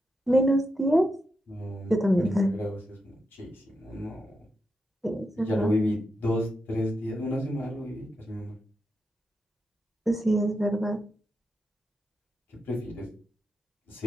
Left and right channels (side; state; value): both; normal; correlation 0.86